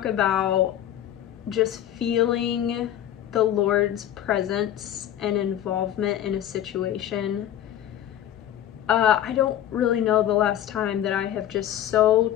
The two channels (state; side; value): quieter; right; 11.4 dB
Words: about just feeling the Lord's presence and involvement in a situation. I don't really know the last time that I have just so